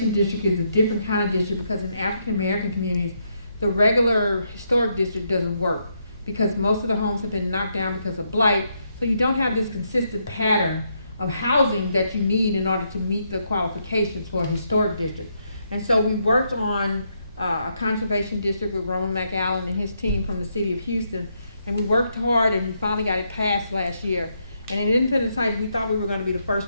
district is a different kind of district because in African American communities, the regular historic district doesn't work because most of the homes have been knocked down because of blight. So you don't have this consistent pattern of housing that you need in order to meet the qualifications for a historic district. And so we worked on a conservation district with Roman McAllen and his team from the city of Houston. And we worked hard and we finally got it passed last year. And in Independence Heights, we thought we were going to be the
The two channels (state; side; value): inverted; both; correlation -0.78